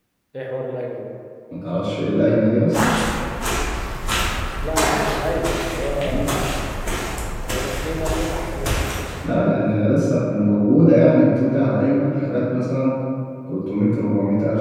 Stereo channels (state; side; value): identical; both; correlation 1.00